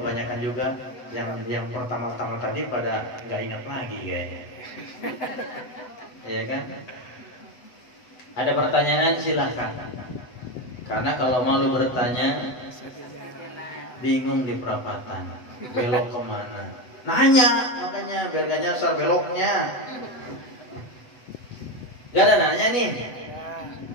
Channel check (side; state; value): right; late; 8.0 ms